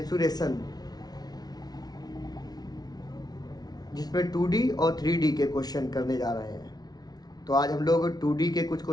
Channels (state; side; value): late; right; 0.19 ms